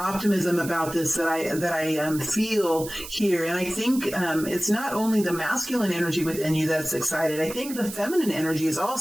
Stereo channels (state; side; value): noise; right; hiss, 12 dB below the sound